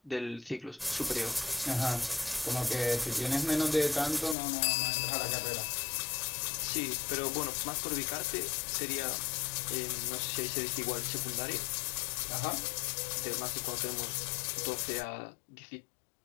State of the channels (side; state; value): right; drops out; at 4.4 s